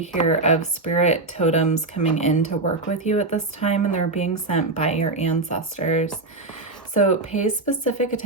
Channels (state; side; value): quieter; left; 3.1 dB